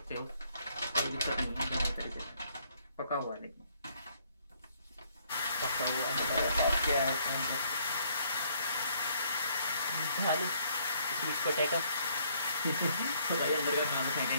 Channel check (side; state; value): both; inverted; correlation -0.67